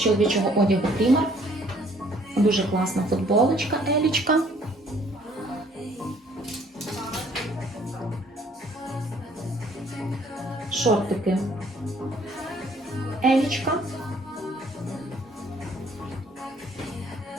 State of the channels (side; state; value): both; normal; correlation 0.60